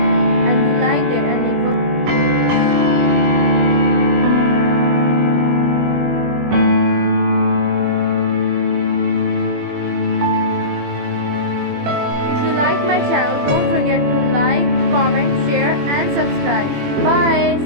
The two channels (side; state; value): left; late; 21 ms